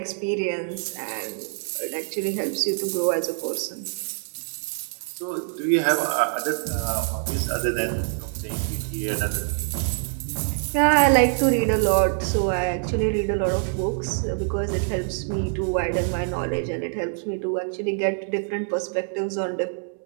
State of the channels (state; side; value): silent; left; digital silence